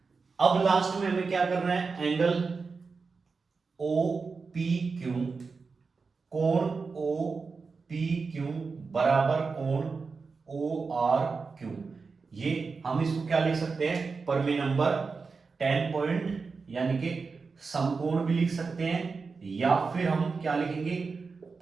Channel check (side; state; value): left; quieter; 4.7 dB